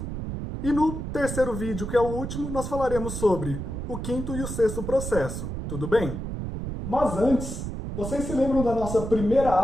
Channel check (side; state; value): right; noise; rumble, 6 dB below the sound